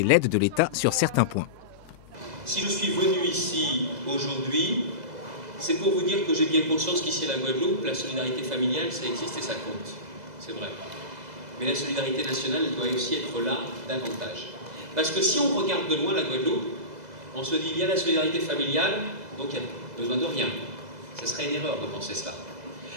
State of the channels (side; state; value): left; late; 2.0 ms